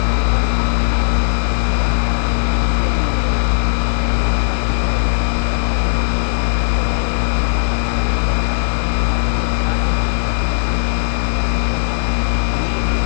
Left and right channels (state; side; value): silent; right; digital silence